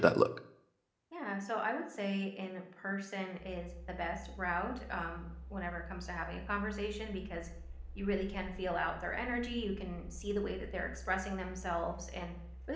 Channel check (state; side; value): identical; both; correlation 1.00